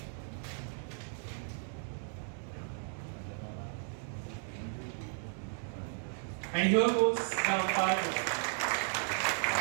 And here goes the umpire jersey.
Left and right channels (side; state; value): left; silent; 54 dB below the other